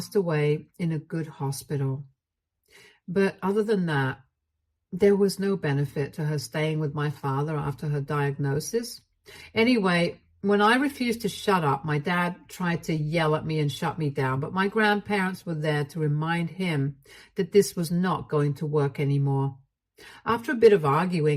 away in a good hospital. But other than that, there was no benefit to her staying with my father after her diagnosis. Anyway, when I refused to shut up, my dad tried to yell at me and shut me down, but my grandparents were there to remind him that this was not going to work anymore. After a bit of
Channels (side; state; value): both; identical; correlation 1.00